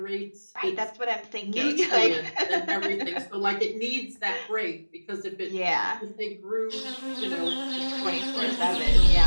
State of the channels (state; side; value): inverted; both; correlation -1.00